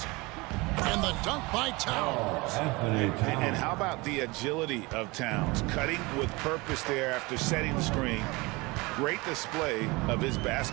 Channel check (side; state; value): left; quieter; 24.4 dB